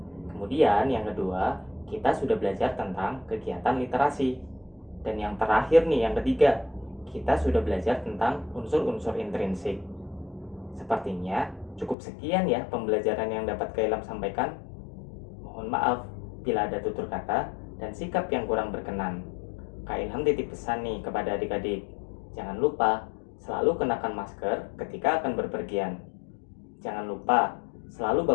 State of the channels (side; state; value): right; drops out; at 12.0 s